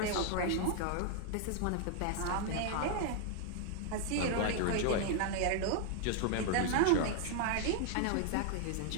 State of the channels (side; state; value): both; different; correlation 0.00